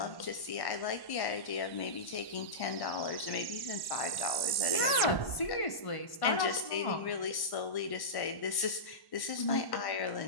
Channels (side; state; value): right; late; 1.1 ms